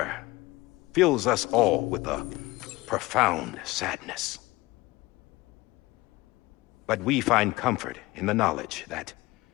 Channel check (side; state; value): right; quieter; 20.3 dB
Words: fills us all with a profound sadness. But we find comfort in the knowledge that